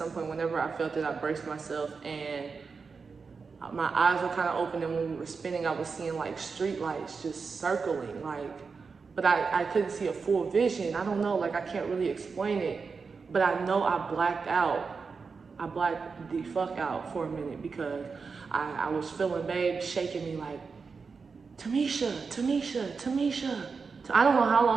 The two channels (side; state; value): left; quieter; 5.0 dB